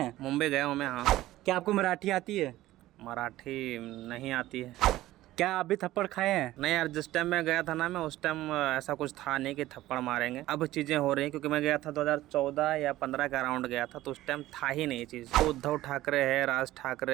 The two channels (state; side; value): quieter; left; 15.8 dB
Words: मुंबई गया हूँ मैं। हाँ, क्या आपको मराठी आती है? मराठी नहीं आती है। क्या आप भी थप्पड़ खाए हैं? नहीं यार, जिस टाइम मैं गया था ना, मैं उस टाइम ऐसा कुछ था नहीं कि थप्पड़ मारेंगे। अब चीज़ें हो रही हैं क्योंकि मैं गया था 2014 या 15 का अराउंड गया था, तो उस टाइम था ही नहीं ये चीज़। तो उद्धव ठाकरे है, राज